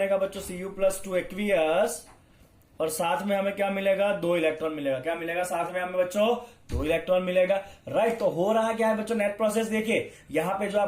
बच्चों Cu प्लस 2 एक्वियस। और साथ में हमें क्या मिलेगा, 2 इलेक्ट्रॉन मिलेगा। क्या मिलेगा साथ में हमें बच्चों, 2 इलेक्ट्रॉन मिलेगा, राइट। तो हो रहा क्या है बच्चों, नेट प्रोसेस देखिए। यहां पे जो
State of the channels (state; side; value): identical; both; correlation 1.00